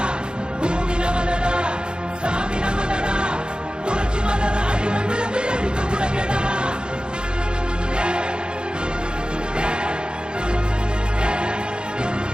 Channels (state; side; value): late; left; 0.050 ms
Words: பூமி நமதடா, சாமி நமதடா, புரட்சி மலர அடிமை விலங்கை அடித்து உடைங்கடா.